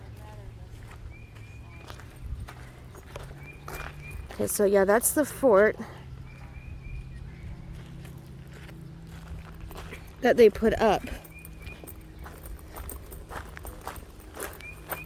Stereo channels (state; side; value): identical; both; correlation 1.00